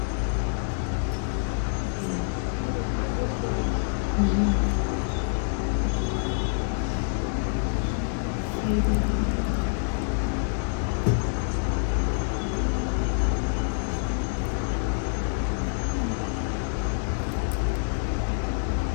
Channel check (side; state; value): right; silent; digital silence